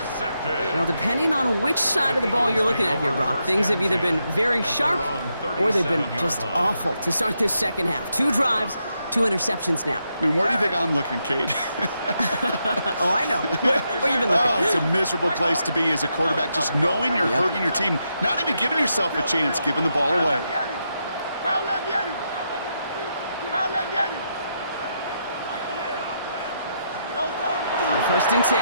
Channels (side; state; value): both; inverted; correlation -0.82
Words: Well, depending on which side of the ball you're looking at here, Brock, things have either been very sharp or they've been just awful to start this second half. 2 drives, 2 interceptions now. I mean, where do you think I'm looking, Kate? Oh, I know. Where you been looking? Oh, it's a miserable place to be as a quarterback, just knowing you're hurting your team, not even giving yourself a chance, giving the ball away. On first and 10,